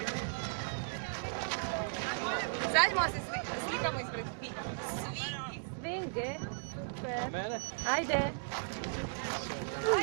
Zađemo se slikamo ispred Svinge. Super. Mene? Ajde.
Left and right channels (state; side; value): silent; left; digital silence